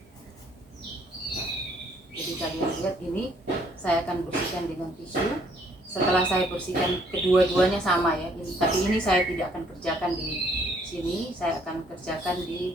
Jadi kalian lihat ini saya akan bersihkan dengan tisu. Setelah saya bersihkan kedua-duanya sama ya, tapi ini saya tidak akan kerjakan di sini, saya akan kerjakan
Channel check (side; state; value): both; normal; correlation 0.64